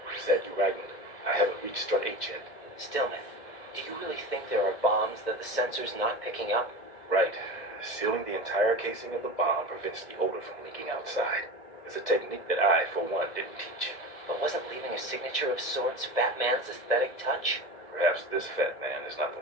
Is that you writing? I haven't reached strut 8 yet. Stillman, do you really think there are bombs that the sensor's not picking up? Right. Sealing the entire casing of the bomb prevents the odor from leaking outside. It's a technique that I, for one, didn't teach. But wasn't leaving a signature of sorts Fat Man's aesthetic touch? Perhaps this fat man is not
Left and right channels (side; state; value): right; late; 2.0 ms